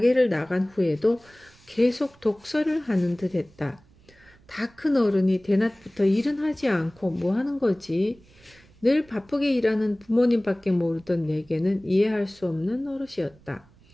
나간 후에도 계속 독서를 하는 듯 했다. 다 큰 어른이 대낮부터 일은 하지 않고 뭐 하는 거지? 늘 바쁘게 일하는 부모님밖에 모르던 내게는 이해할 수 없는 노릇이었다.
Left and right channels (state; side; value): noise; right; rumble, 28 dB below the sound